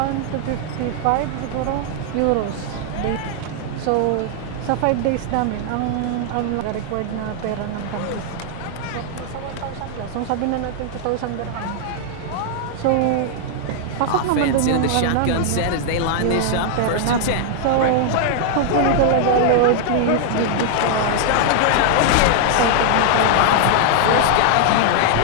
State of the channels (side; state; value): both; different; correlation 0.00